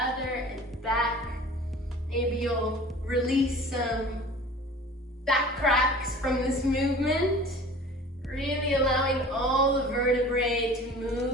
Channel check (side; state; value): both; normal; correlation 0.43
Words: and back. Maybe you'll release some back cracks from this movement. Really allowing all the vertebrae to